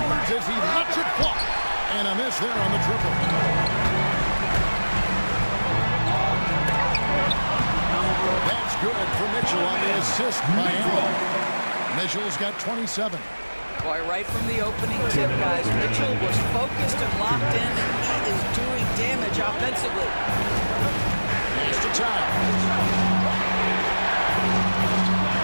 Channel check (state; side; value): inverted; both; correlation -1.00